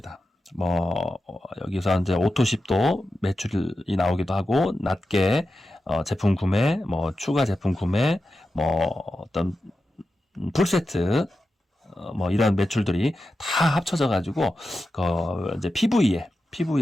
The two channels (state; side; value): normal; both; correlation 0.91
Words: 뭐 여기서 이제 오토십도 매출이 나오기도 하고, 낮게 제품 구매, 뭐 추가 제품 구매, 뭐 어떤 풀세트, 뭐 이런 매출들이 다 합쳐져 가지고 이제